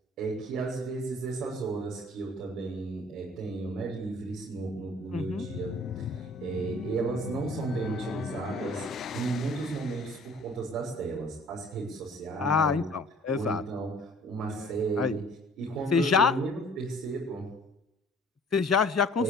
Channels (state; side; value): normal; both; correlation 0.52